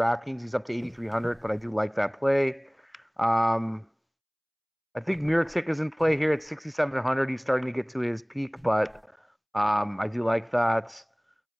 He's up to 8,300, but I do like that play. I think Mirotic is in play here at 6,700. He's starting to get to his peak, but I do like that.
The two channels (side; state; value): both; identical; correlation 1.00